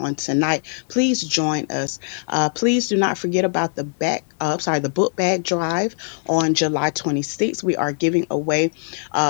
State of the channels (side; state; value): right; silent; digital silence